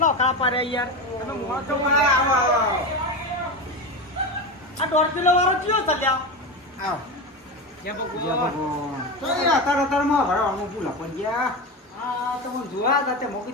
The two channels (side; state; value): both; normal; correlation 0.20